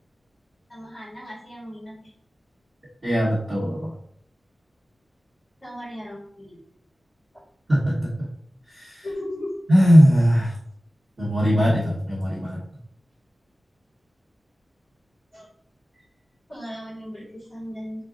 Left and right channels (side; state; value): both; normal; correlation 0.97